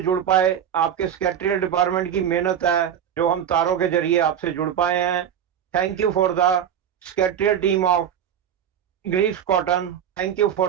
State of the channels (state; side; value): quieter; left; 9.2 dB